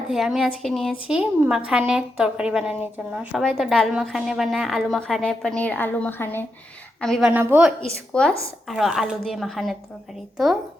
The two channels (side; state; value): both; normal; correlation 0.85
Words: আমি আজকে নিয়েছি মাখানের তরকারি বানানোর জন্য। সবাই তো ডাল মাখানে বানায়, আলু মাখানে, পনির আলু মাখানে। আমি বানাবো স্কোয়াশ আর আলু দিয়ে মাখানের তরকারি। তো